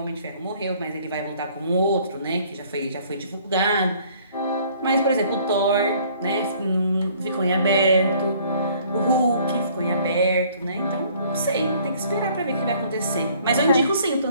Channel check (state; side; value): inverted; both; correlation -0.58